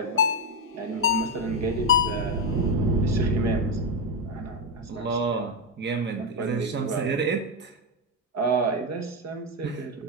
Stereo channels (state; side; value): normal; both; correlation 0.08